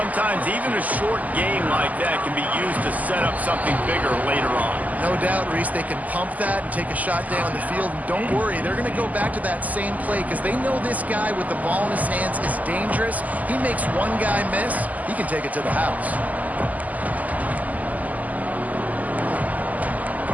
even a short game like that can be used to set up something bigger later on. No doubt, Reese, they can pump that and take a shot down the field. And don't worry, they're going to go back to that same play because they know this guy with the ball in his hands is dangerous. He makes one guy miss, he can take it to the house.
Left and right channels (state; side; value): late; left; 0.078 ms